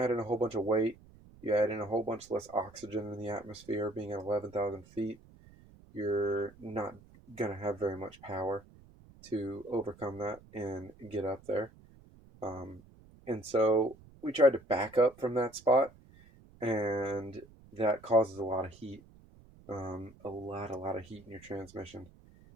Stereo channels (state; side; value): noise; right; rumble, 24 dB below the sound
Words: in a whole bunch of weight, you add in a whole bunch less oxygen in the atmosphere, being at 11,000 feet, you're not going to have very much power to overcome that and get up there. And so we tried to back up from that spot, and that causes a lot of heat. A lot of heat in your transmission.